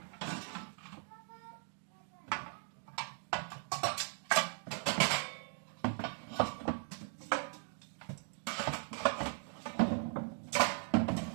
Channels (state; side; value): silent; left; 52 dB below the other